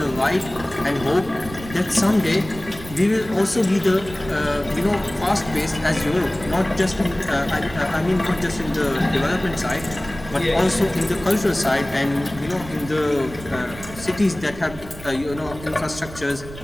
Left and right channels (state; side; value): noise; right; rumble, 15 dB below the sound